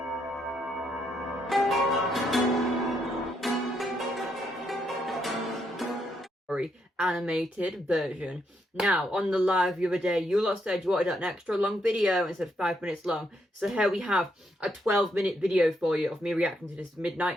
story animated version. Now, on the live the other day, you lot said you wanted an extra long video instead of 5 minutes long, so here we have a 12-minute video for you of me reacting to this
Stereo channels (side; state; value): both; normal; correlation 0.77